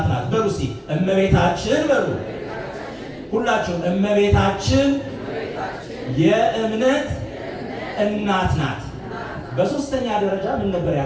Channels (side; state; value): both; identical; correlation 1.00